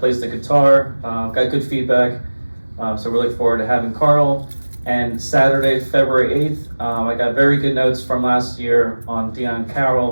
the guitar. Got good feedback. So we're looking forward to having Carl. And Saturday, February 8th, I got very good notes from last year on Dion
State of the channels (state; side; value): inverted; both; correlation -1.00